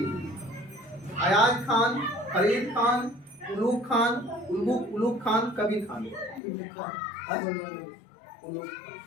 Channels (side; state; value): right; drops out; at 6.4 s